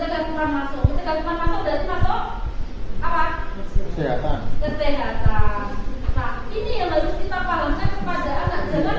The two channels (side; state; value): both; identical; correlation 1.00